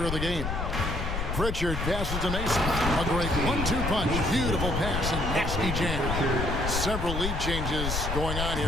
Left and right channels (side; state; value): left; noise; rumble, 3 dB below the sound